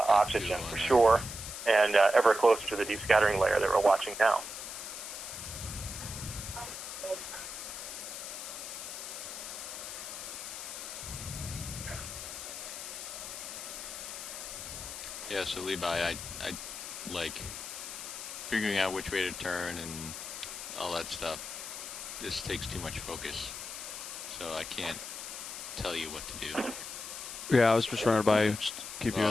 for sure, and ever closer to the deep scattering layer that we're watching now. Yeah, so Levi, I like figuring out which way to turn and all that stuff. This takes too much focus, so I can't tell you what to do. Yeah, I was just running by, just keep you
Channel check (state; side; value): noise; left; hiss, 8 dB below the sound